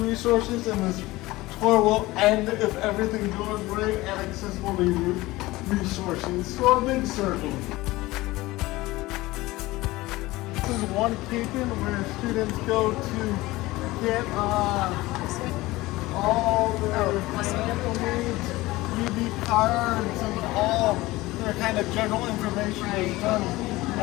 Resources and this tour will end, if everything goes right, at Accessibility Resources. So a big circle. This is one Capen where students go to get all their financial needs, UB cards, and all their kind of general information is done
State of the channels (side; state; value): right; quieter; 19.4 dB